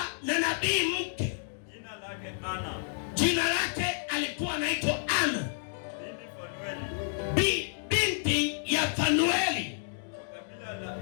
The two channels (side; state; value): right; silent; digital silence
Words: na nabii mke. Jina lake Anna. Jina lake alikuwa anaitwa Anna. Binti ya Fanueli. Kabila